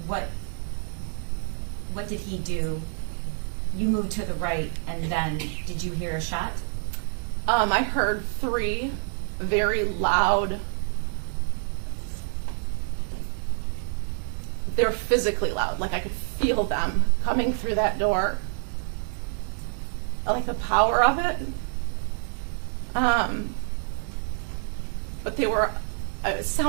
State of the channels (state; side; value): silent; left; 55 dB below the other